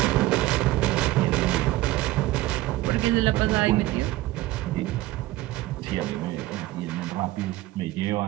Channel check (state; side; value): quieter; left; 17.1 dB